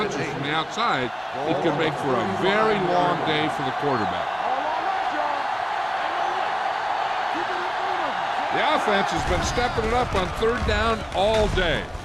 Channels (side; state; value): both; identical; correlation 1.00